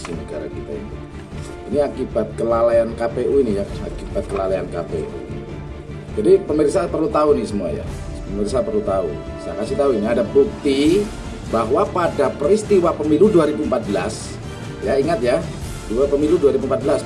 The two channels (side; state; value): both; identical; correlation 1.00